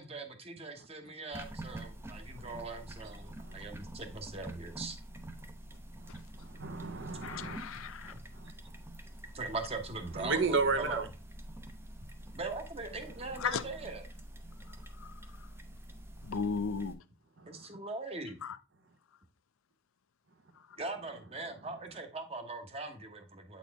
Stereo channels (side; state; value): both; normal; correlation 0.14